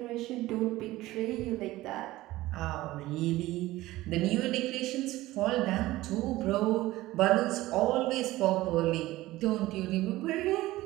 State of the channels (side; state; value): left; quieter; 17.4 dB